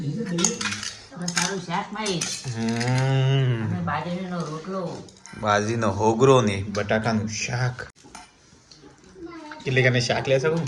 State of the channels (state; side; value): identical; both; correlation 1.00